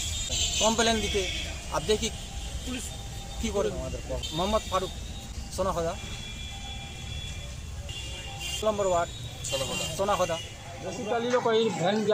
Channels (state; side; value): identical; both; correlation 1.00